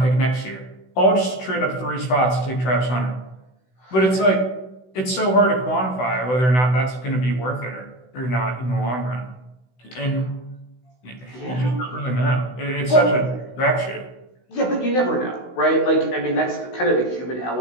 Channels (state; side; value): late; right; 16 ms